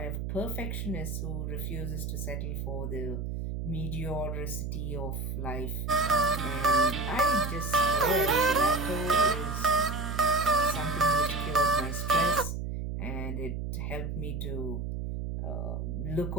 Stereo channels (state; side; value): noise; right; hum, 4 dB below the sound